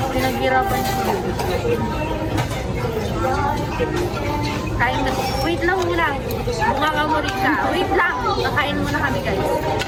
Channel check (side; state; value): both; identical; correlation 1.00